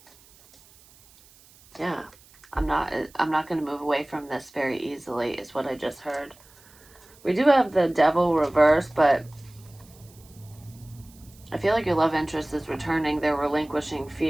Yeah. I'm not going to move away from this very easily, is what I just heard. We do have the devil reverse, but I feel like your love interest is returning. They're relinquishing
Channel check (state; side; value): noise; right; hiss, 26 dB below the sound